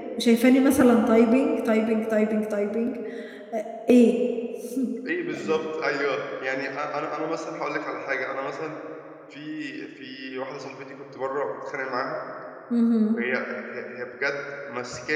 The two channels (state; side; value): identical; both; correlation 1.00